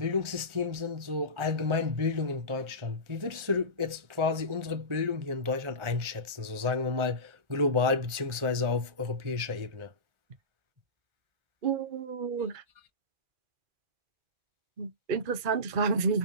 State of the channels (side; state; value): left; late; 1.4 ms